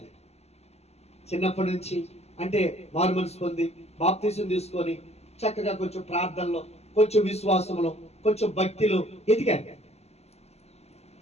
చిన్నప్పటి నుంచి. అంటే మారు మనసు పొంది బాప్తిసం తీసుకొని చక్కగా కొంచెం ప్రార్థనలో, కొంచెం విశ్వాసంలో, కొంచెం భక్తిలో ఎదిగారు.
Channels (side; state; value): right; late; 0.30 ms